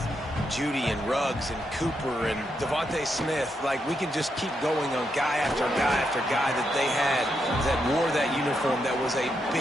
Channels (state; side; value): normal; both; correlation 0.81